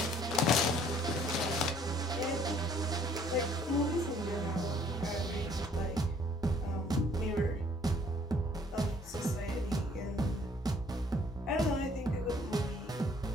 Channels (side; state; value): both; normal; correlation 0.60